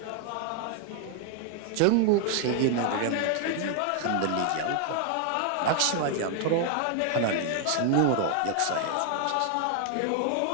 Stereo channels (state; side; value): different; both; correlation 0.00